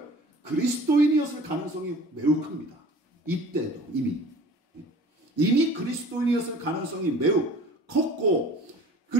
그리스도인이었을 가능성이 매우 큽니다. 이때도 이미 그리스도인이었을 가능성이 매우 컸고,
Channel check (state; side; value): normal; both; correlation 0.45